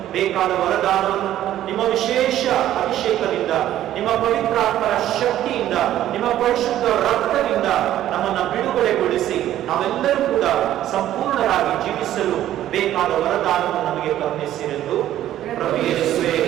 ಬೇಕಾದ ವರದಾನವನ್ನು ನಿಮ್ಮ ವಿಶೇಷ ಅಭಿಷೇಕದಿಂದ, ನಿಮ್ಮ ಪವಿತ್ರಾತ್ಮರ ಶಕ್ತಿಯಿಂದ, ನಿಮ್ಮ ಪರಿಶುದ್ಧ ರಕ್ತದಿಂದ ನಮ್ಮನ್ನು ಬಿಡುಗಡೆಗೊಳಿಸಿ ನಾವೆಲ್ಲರೂ ಕೂಡ ಸಂಪೂರ್ಣರಾಗಿ ಜೀವಿಸಲು ಬೇಕಾದ ವರದಾನವನ್ನು ನಮಗೆ ಕರುಣಿಸಿರೆಂದು ಪ್ರಭು ಯೇಸುವೇ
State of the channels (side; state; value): left; quieter; 12.5 dB